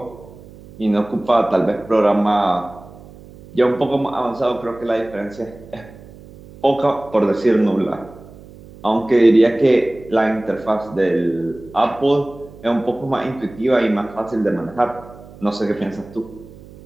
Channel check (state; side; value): noise; right; hum, 20 dB below the sound